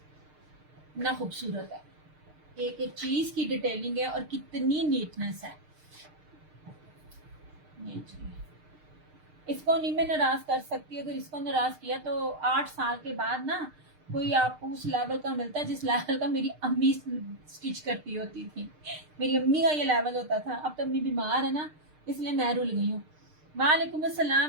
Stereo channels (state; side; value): late; left; 6.6 ms